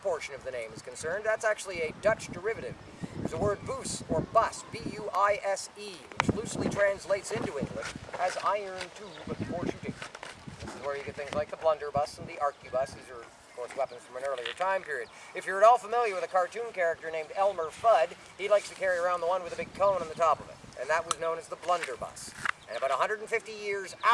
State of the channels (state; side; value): identical; both; correlation 1.00